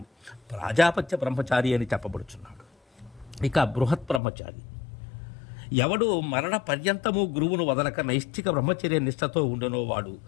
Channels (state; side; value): drops out; right; at 4.2 s